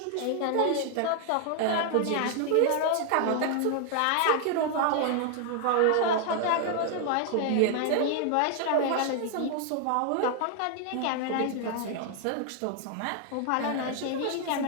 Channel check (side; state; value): both; different; correlation 0.00